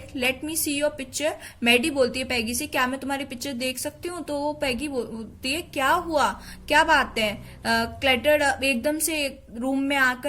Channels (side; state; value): both; identical; correlation 1.00